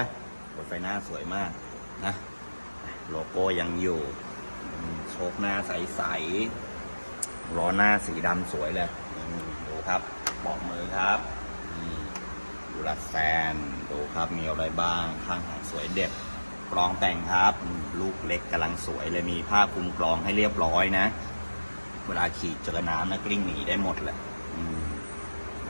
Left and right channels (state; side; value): inverted; both; correlation -1.00